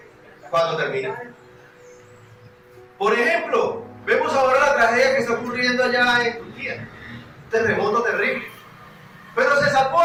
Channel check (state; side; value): identical; both; correlation 1.00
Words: ¿Cuándo termina? Por ejemplo, vemos ahora la tragedia que está ocurriendo allá en Turquía. Un terremoto terrible. Pero se salvó